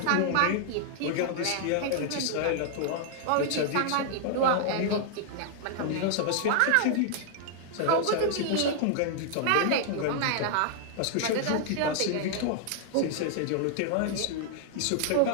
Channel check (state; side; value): different; both; correlation -0.01